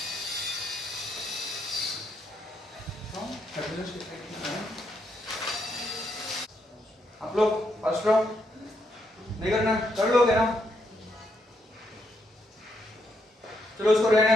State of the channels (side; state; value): both; normal; correlation 0.77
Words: आप लोग फर्स्ट राउंड नहीं करना, कर लोगे ना। चलो उसको रहने